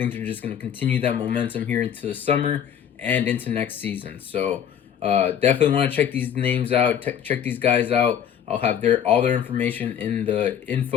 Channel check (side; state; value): right; quieter; 8.9 dB